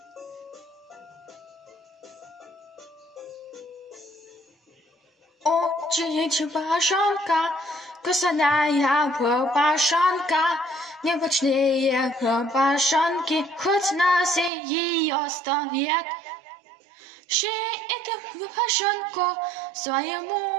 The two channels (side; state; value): left; drops out; at 14.5 s